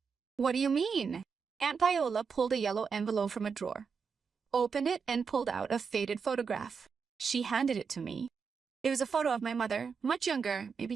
"What do you mean?" Aunt Paola pulled a yellow envelope from a drawer, opened it, and pulled out a faded photograph. She handed it to me. It was a photo of my mother, much younger,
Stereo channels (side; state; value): left; quieter; 5.8 dB